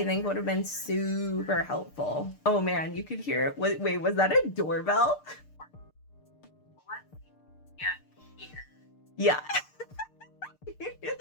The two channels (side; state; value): right; late; 6.6 ms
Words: think would have been super helpful. Oh man, you could hear it. Wait, was that a doorbell? Yeah. You hear